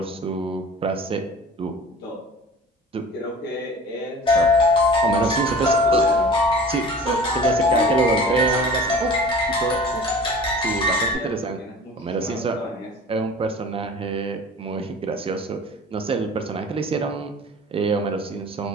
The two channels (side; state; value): both; normal; correlation 0.42